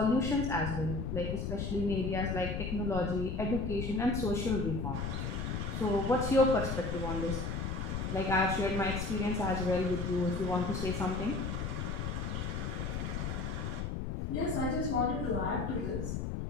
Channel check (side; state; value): left; noise; rumble, 3 dB below the sound